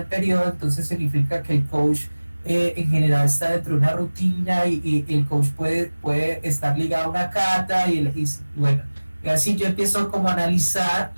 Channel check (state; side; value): inverted; both; correlation -1.00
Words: periodo, entonces significa que el coach en general está dentro de una rutina y el coach puede estar ligado a una cata y bueno, y así yo empiezo como a analizar